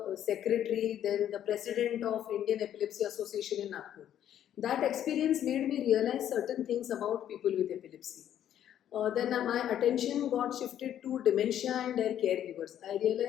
secretary, then the president of Indian Epilepsy Association in Nagpur. That experience made me realize certain things about people with epilepsy. Then my attention got shifted to dementia and their caregivers. I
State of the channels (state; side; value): quieter; right; 10.7 dB